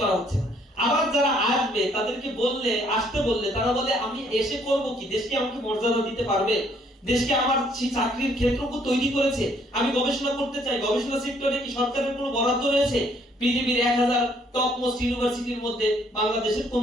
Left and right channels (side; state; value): both; normal; correlation 0.65